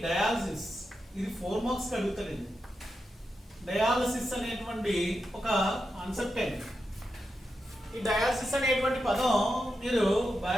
డయాలసిస్. ఇది 4 మార్క్స్ అడుగుతారండి. డయాలసిస్ అనేటువంటి ఒక కాన్సెప్ట్ అండి. ఈ డయాలసిస్ అనేటువంటి పదం మీరు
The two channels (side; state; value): both; normal; correlation 0.88